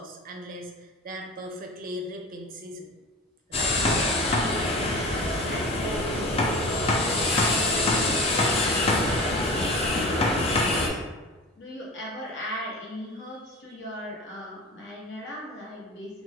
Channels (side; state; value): both; normal; correlation 0.32